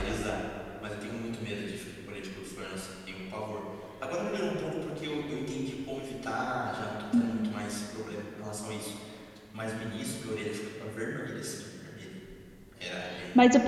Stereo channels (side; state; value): both; identical; correlation 1.00